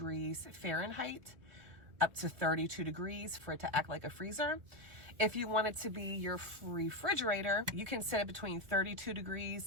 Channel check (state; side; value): late; left; 1.8 ms